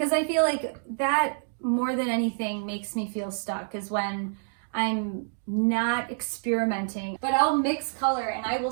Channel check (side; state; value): left; silent; digital silence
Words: I feel like that more than anything makes me feel stuck is when I'm not experimenting, but I'll mix color and I will